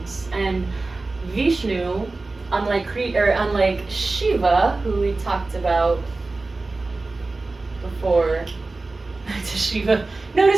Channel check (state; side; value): quieter; left; 3.4 dB